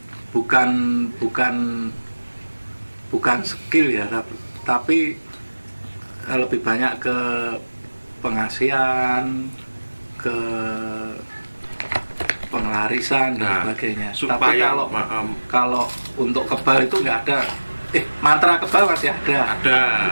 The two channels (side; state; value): both; inverted; correlation -1.00